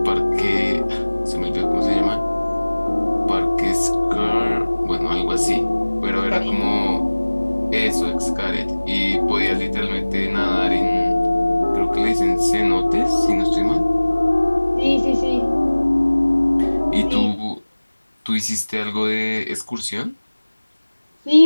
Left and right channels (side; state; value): both; inverted; correlation -1.00